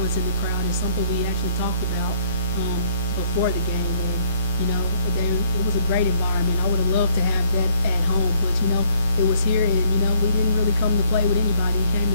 the crowd is something we actually talked about before the game. And it was a great environment. I would have loved to have that at home, but it was here, and we didn't really come to play with anybody. We came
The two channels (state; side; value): inverted; both; correlation -0.63